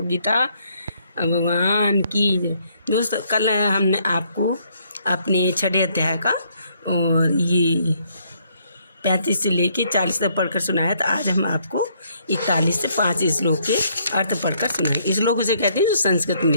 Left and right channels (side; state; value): both; inverted; correlation -0.69